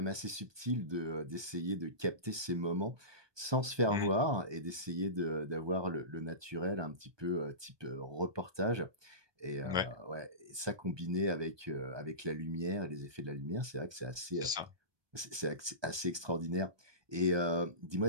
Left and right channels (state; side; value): late; left; 1.2 ms